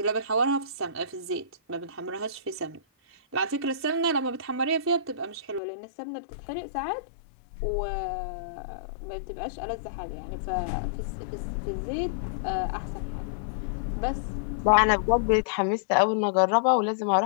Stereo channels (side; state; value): right; drops out; at 5.6 s